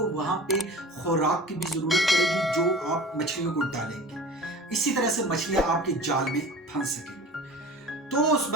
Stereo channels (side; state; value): both; normal; correlation 0.39